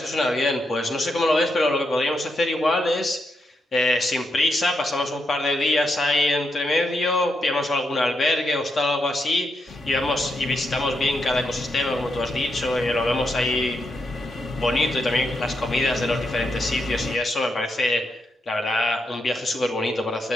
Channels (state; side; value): normal; both; correlation 0.82